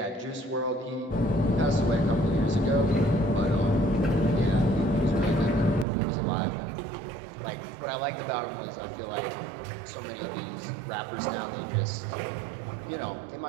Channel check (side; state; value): left; drops out; at 5.9 s